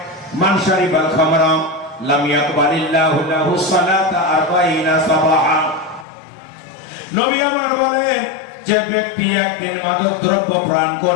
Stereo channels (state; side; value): drops out; right; at 6.1 s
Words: মান শারিবাল খামরা লাম ইয়াকবালিল্লাহু লাহু সালাতা 40 সাবাহা। নবী আমার বলেন, যে ব্যক্তি একদিন মাদক দ্রব্য পান